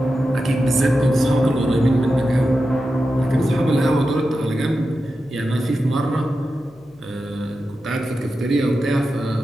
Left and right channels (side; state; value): left; noise; hum, 29 dB below the sound